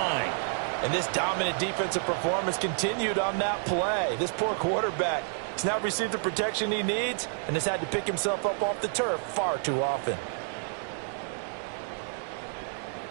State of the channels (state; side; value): silent; left; 58 dB below the other